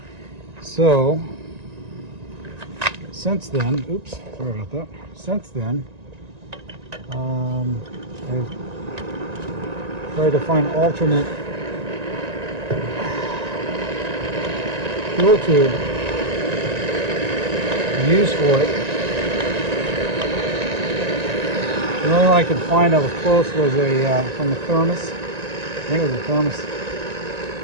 So since then, oops, sorry about that. Since then, I've tried to find alternate fuel tube to use for it. The only one I could find that was close was a from the Thermos. I think it was a Thermos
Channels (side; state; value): left; late; 1.9 ms